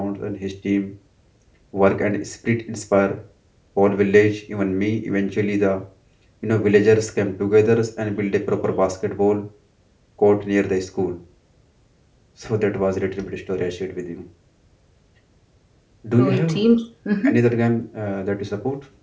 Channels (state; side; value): identical; both; correlation 1.00